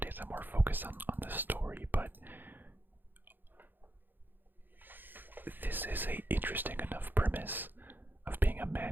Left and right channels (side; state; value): left; late; 0.091 ms